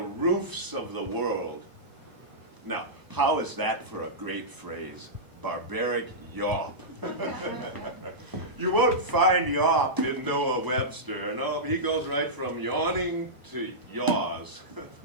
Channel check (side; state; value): left; late; 1.0 ms